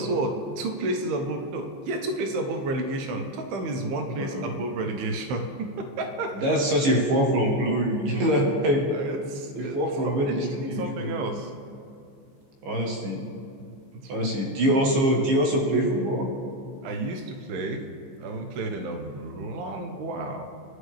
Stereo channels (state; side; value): late; left; 15 ms